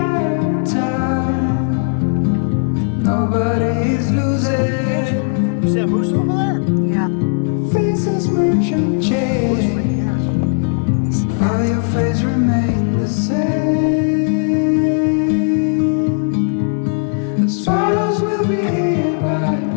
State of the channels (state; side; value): silent; right; 64 dB below the other